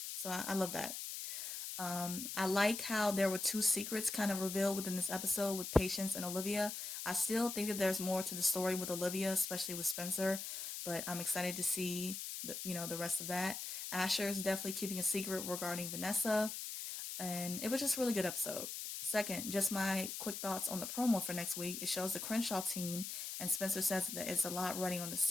So I love that. I like how there were 2 secrets kind of revealed within this episode with Patience and Olivia. I still think that there's more to the story with Olivia, especially with Spencer, but I'm excited to see the rest of that. Asher is definitely keeping a secret regarding Vanessa, and it was just a really good episode. Second, just my quick thoughts on the promo for next week. It shows the Crenshaw team, and Spencer says that it's a lot running on the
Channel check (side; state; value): left; noise; hiss, 6 dB below the sound